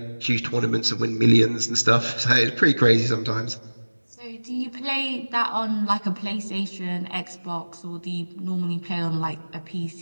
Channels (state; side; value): inverted; both; correlation -1.00